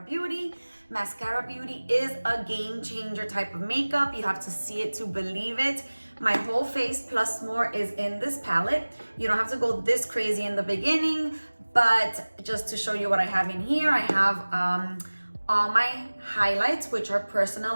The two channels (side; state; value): both; inverted; correlation -1.00